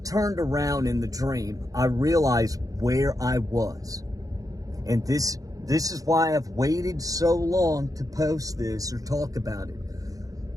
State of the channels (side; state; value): left; late; 0.17 ms